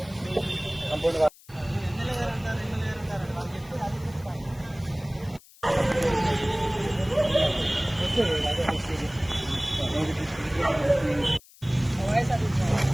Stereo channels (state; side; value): noise; left; hiss, 24 dB below the sound